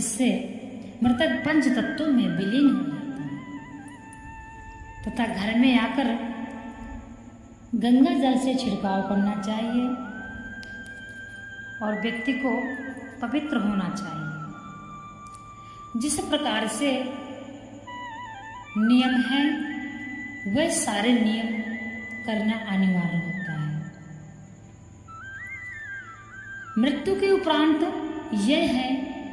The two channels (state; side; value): identical; both; correlation 1.00